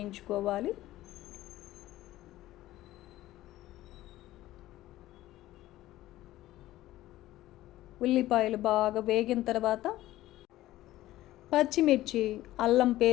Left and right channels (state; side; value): quieter; right; 15.5 dB